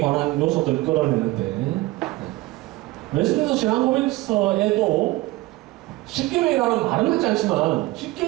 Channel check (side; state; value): left; quieter; 19.7 dB